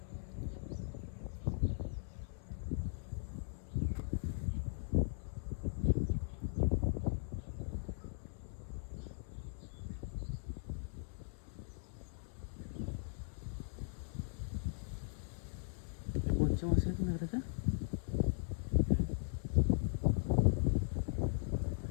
कोणचे मासे आहेत मेघराच्या?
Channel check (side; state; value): right; silent; 52 dB below the other